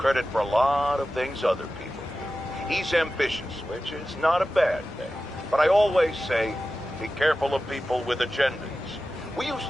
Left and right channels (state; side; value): normal; both; correlation 0.94